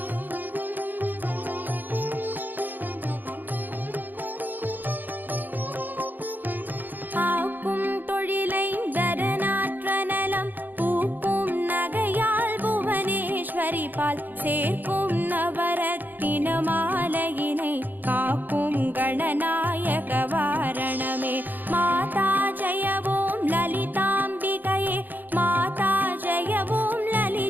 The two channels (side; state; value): left; late; 0.088 ms